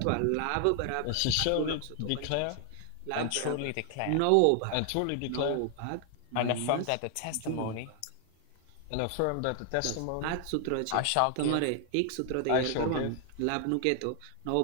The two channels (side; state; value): both; different; correlation 0.00